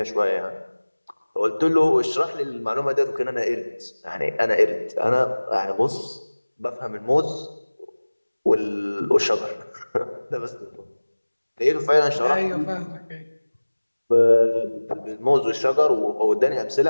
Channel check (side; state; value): both; inverted; correlation -1.00